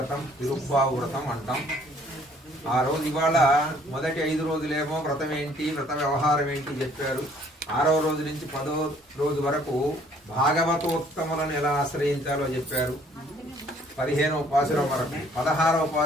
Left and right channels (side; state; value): both; normal; correlation 0.60